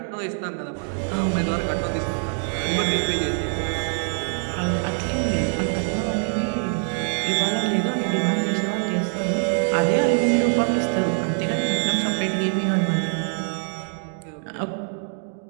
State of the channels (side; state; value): left; silent; 63 dB below the other